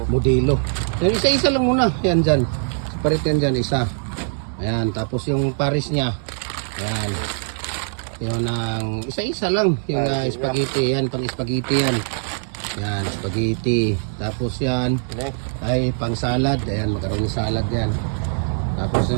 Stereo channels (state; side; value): silent; left; 63 dB below the other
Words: modelo. Yan, isa-isa lang muna. Yan dyan. Separate yan dyan, isa. Ayan, tapos yung pares niya. Ayan. Yung ang isa-isa lang. Yung spaghetti. Yan, pang spaghetti yan. Yan, spaghetti. Tapos yan ay pang salad. Ayan, magkaroon ng salad yan. Tapos